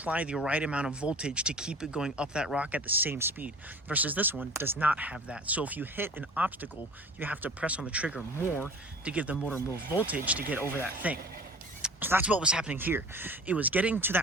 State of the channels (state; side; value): normal; both; correlation 0.42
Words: the right amount of voltage to keep it going up that rock at the same speed. Versus this one does not have that. So if you hit an obstacle, you have to press on the trigger more to give the motor more voltage to get over that thing. So that's what was happening here. It was getting to